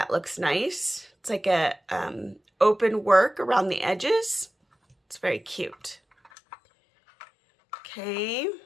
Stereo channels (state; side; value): drops out; right; at 6.3 s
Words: looks nice. It's like a open work around the edges. It's very cute. Okay.